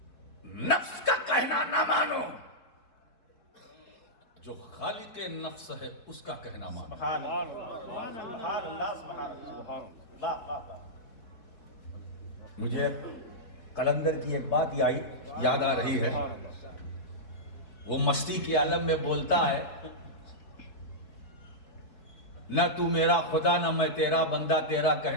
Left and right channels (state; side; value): late; right; 4.3 ms